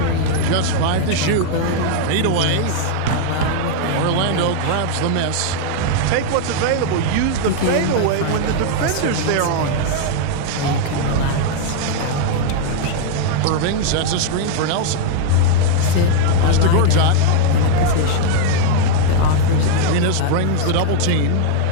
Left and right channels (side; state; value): both; different; correlation 0.00